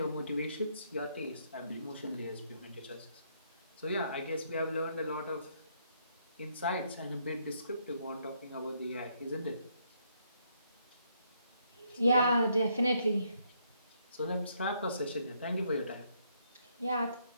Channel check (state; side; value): inverted; both; correlation -0.72